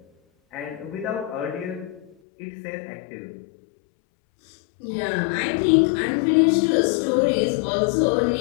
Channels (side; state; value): right; drops out; at 2.1 s